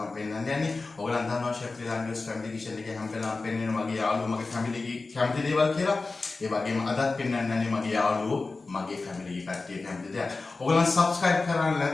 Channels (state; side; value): quieter; right; 3.7 dB